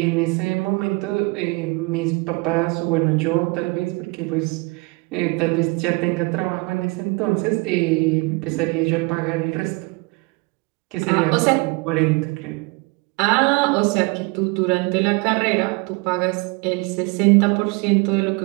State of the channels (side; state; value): left; quieter; 27.1 dB